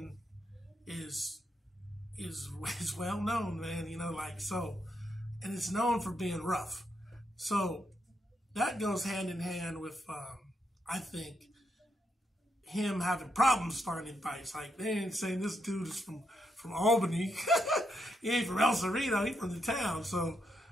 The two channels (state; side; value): normal; both; correlation 0.80